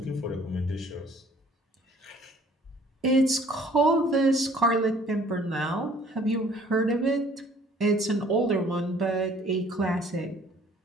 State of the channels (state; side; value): normal; both; correlation 0.56